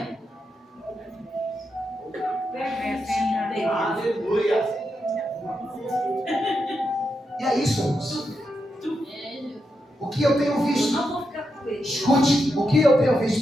Aleluia. E é isso, irmãos. O que eu tenho visto? Não vou ficar com ele. Escute, o que eu tenho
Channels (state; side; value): normal; both; correlation 0.85